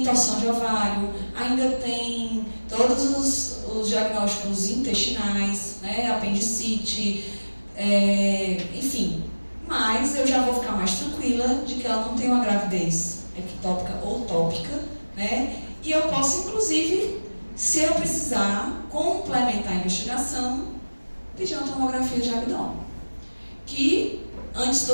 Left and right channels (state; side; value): inverted; both; correlation -1.00